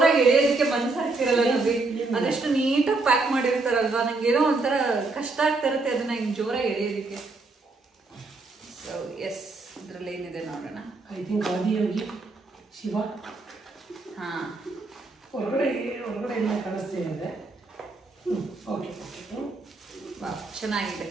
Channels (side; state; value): left; quieter; 3.5 dB